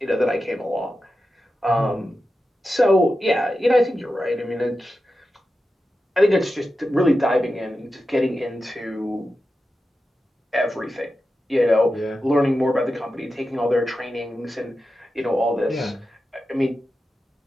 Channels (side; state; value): both; normal; correlation 0.91